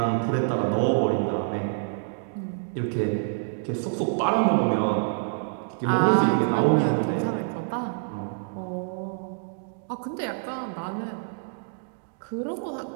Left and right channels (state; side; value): silent; left; digital silence